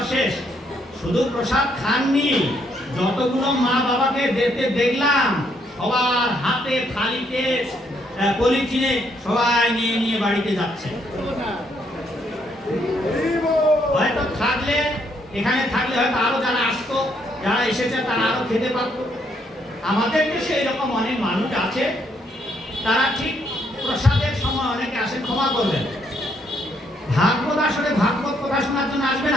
শেষ। শুধু প্রসাদ খাননি, যতগুলো মা বাবাকে দিতে দেখলাম সবার হাতে থালিতে পলিথিনে সবাই নিয়ে নিয়ে বাড়িতে যাচ্ছে। হয়তো থাকলে এখানে থাকলে হয়তো আরো যারা আসতো, যারা এসেছে তারা আরো খেতে পারত। আমাদের দেশে এরকম অনেক মানুষ আছে, তারা ঠিক প্রসাদের সময় অনেকে আসে, ক্ষমা করবেন, ভাগবত আসলে ভাগবত কথা শোনার জন্য আসবে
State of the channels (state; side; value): normal; both; correlation 0.72